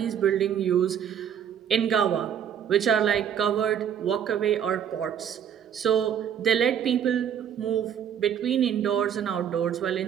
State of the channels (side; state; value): left; quieter; 8.9 dB